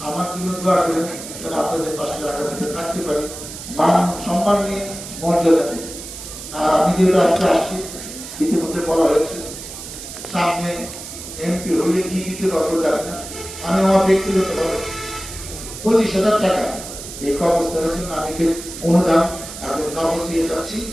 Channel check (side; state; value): right; noise; hiss, 11 dB below the sound